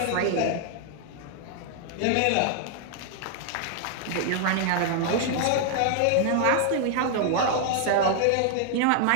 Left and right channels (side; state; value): both; different; correlation 0.00